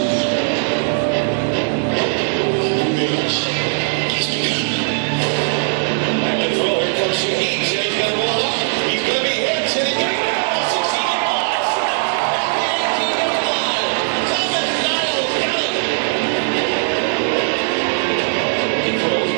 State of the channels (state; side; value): silent; left; digital silence